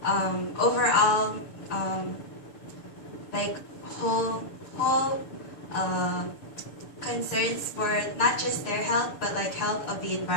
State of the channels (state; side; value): late; right; 6.9 ms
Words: overall like whole concerns for not just their health but like health of the